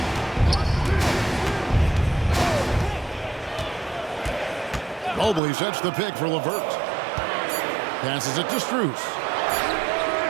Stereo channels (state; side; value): drops out; left; at 5.4 s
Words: Mobley sets the pick for LeVert. Passes it to Strus.